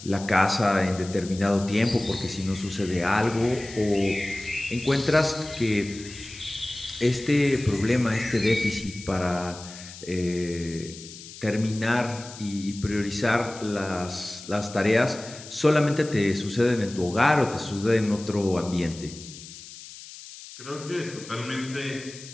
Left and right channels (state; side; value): noise; left; hiss, 15 dB below the sound